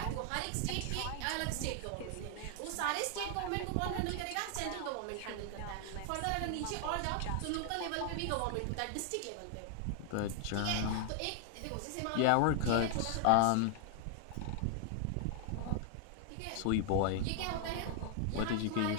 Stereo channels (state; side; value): different; both; correlation 0.00